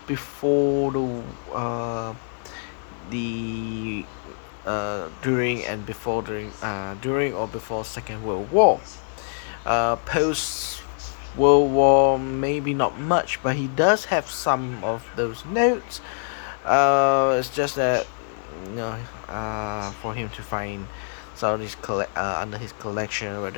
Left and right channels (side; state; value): right; silent; digital silence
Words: before the during or before Second World War. Post World War, maybe not much, but he does have some of those notes. It's just that you know, for him to find some of his under his collection,